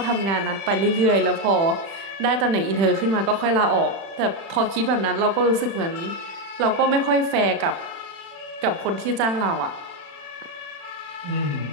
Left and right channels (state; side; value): late; left; 36 ms